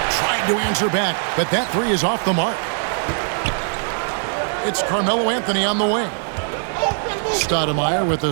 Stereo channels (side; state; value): left; silent; digital silence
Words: to answer back, but that 3 is off the mark. It's Carmelo Anthony on the wing. Stoudemire with